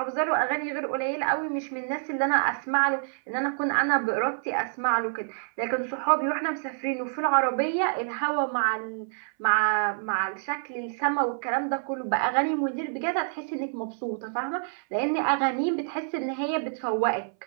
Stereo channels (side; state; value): left; silent; 59 dB below the other